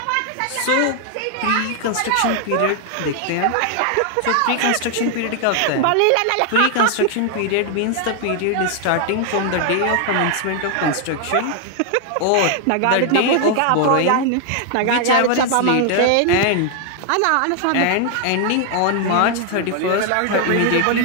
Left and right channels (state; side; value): different; both; correlation 0.00